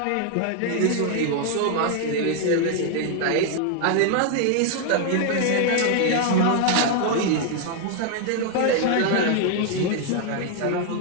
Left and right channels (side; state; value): both; different; correlation 0.00